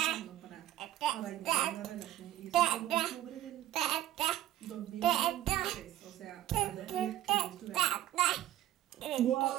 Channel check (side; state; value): left; quieter; 13.5 dB